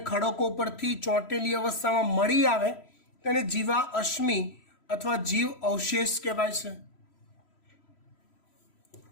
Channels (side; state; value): right; late; 3.0 ms